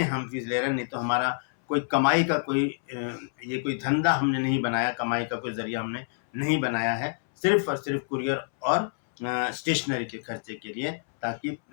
हम फीस ले रहे हैं। नहीं तो हमारा कोई कमाई का ये कोई धंधा हमने नहीं बनाया, कमाई का कोई ज़रिया हमने नहीं बनाया है। सिर्फ़ और सिर्फ़ कुरियर और स्टेशनरी के खर्चे के लिए, ताकि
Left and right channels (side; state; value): right; silent; 60 dB below the other